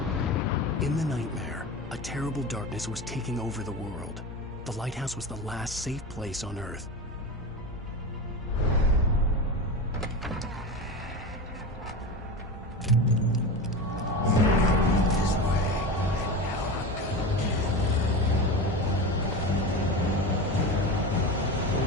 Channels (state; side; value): normal; both; correlation 0.25